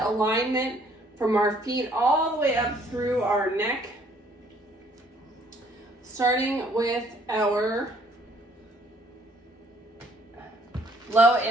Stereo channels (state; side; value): normal; both; correlation 0.62